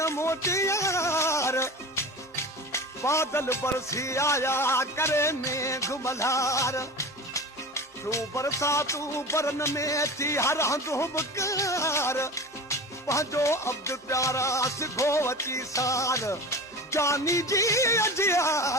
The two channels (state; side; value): normal; both; correlation 0.32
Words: मोटी यार बादल बरसी आया करे मेघ मल्हार तू बरसा तू बरन में थी हर हंधु बकार पंहिंजो अब्द प्यारा सिखो अची सार जानी जी